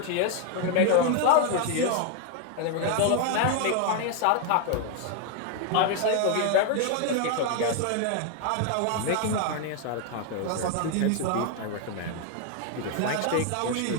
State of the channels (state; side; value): different; both; correlation 0.01